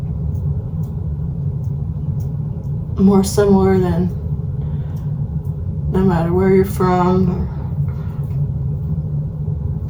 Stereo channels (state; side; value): identical; both; correlation 1.00